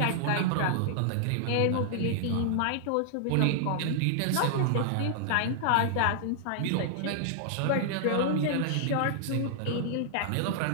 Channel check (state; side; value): different; both; correlation -0.01